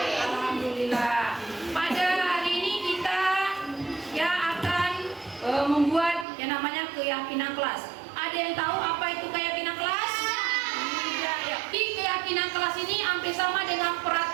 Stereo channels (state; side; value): drops out; left; at 6.2 s